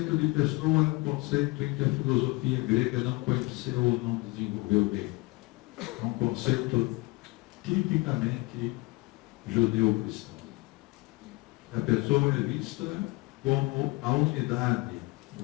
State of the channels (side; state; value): right; quieter; 24.5 dB